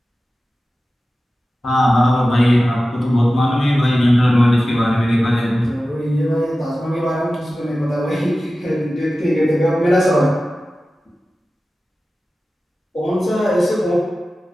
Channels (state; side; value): normal; both; correlation 0.95